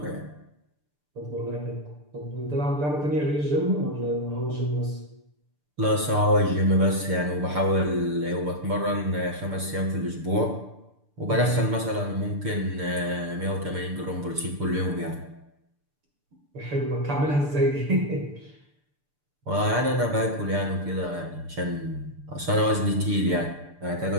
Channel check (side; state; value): left; late; 6.8 ms